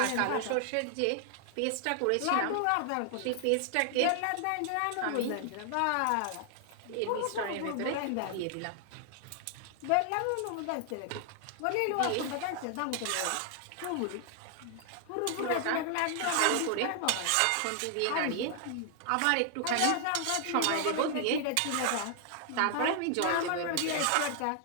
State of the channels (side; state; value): both; different; correlation 0.00